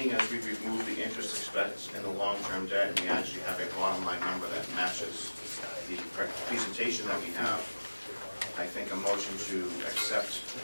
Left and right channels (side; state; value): both; inverted; correlation -1.00